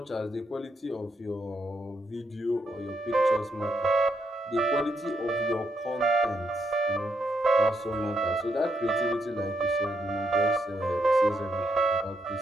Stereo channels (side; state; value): both; normal; correlation 0.78